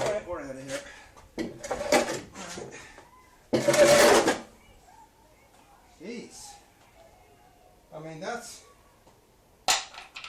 we're out of here. Jeez. I mean, that's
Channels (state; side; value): identical; both; correlation 1.00